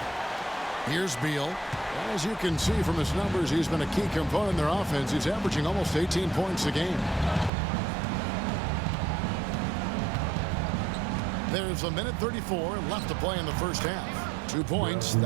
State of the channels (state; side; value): drops out; left; at 7.5 s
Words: Here's Beal. As you can see from his numbers, he's been a key component in their offense. He's averaging almost 18 points a game. There's a minute 34 left to play in the first half. 2 points,